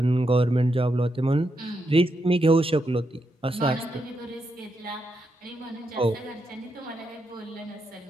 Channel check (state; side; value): normal; both; correlation 0.82